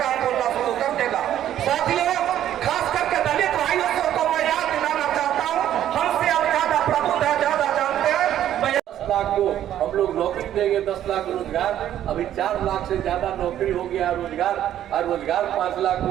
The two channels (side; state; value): left; quieter; 11.4 dB